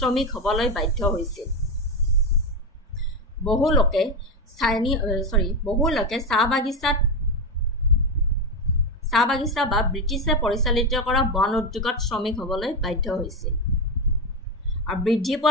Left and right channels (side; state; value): both; normal; correlation 0.13